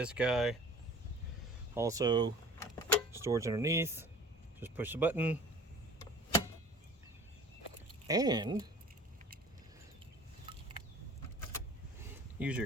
guy. Also, storage underneath, just push the button. And use your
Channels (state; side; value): normal; both; correlation 0.45